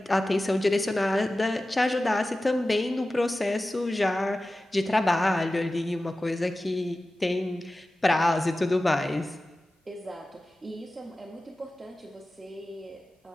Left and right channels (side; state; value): both; normal; correlation 0.95